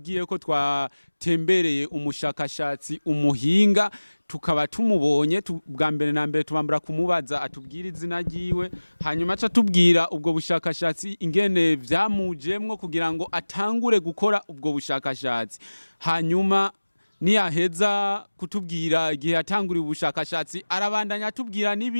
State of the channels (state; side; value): inverted; both; correlation -1.00